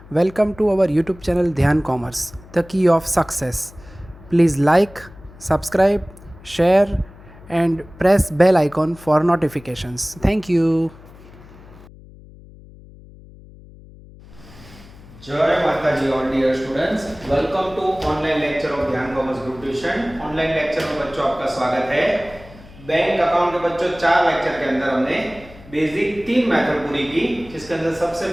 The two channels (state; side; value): noise; left; hum, 21 dB below the sound